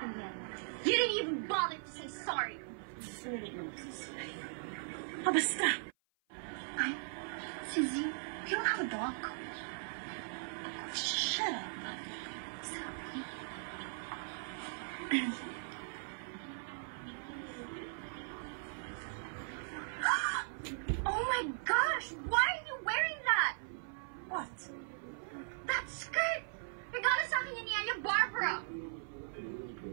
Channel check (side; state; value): left; silent; 52 dB below the other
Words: mo. You didn't even bother to say sorry. Sulit na magsasabi. Basta! Ay, Suzy, you don't have a dog. Shut up. Sorry. Oh my gosh! Why are you wearing that? What? That skirt! Regalo sa akin yan ni Anya Barbara!